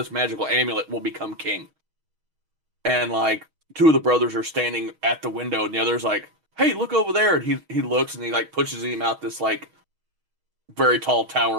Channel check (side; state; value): left; late; 6.3 ms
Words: magical amulet will become king. And like 2 of the brothers are standing at the window, and the other's like, "Hey, look over there!" And he looks and he like pushes him out this like very tall